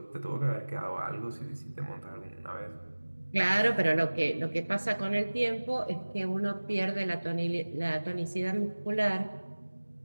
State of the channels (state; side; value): inverted; both; correlation -1.00